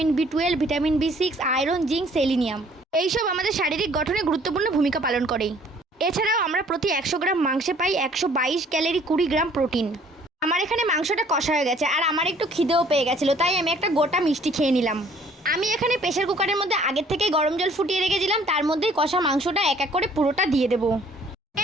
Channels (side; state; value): both; normal; correlation 0.58